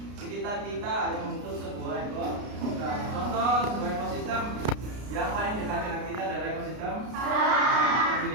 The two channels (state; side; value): late; left; 33 ms